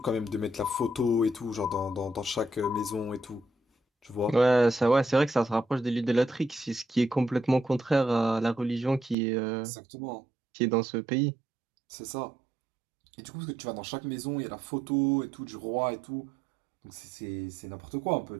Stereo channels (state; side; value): drops out; left; at 9.2 s